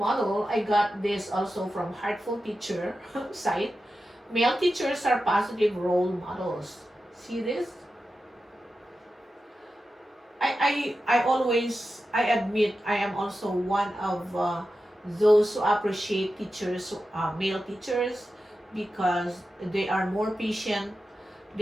I got this also from Heartful Teacher site. Male teachers are positive role models. See this? I always, I admit, I am also one of those who appreciate teachers, male teachers, because they are more patient.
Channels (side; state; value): both; normal; correlation 0.92